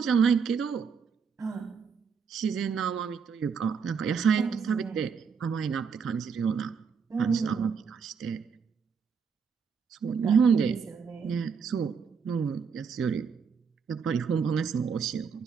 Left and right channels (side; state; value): left; quieter; 6.1 dB